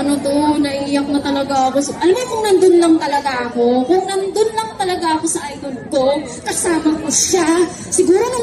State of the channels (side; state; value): both; identical; correlation 1.00